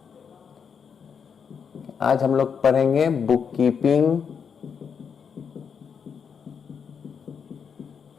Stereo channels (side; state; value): right; quieter; 6.7 dB